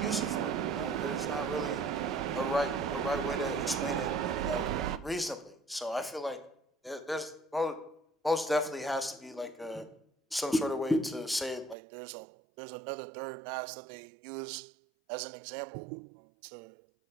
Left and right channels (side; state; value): left; drops out; at 11.8 s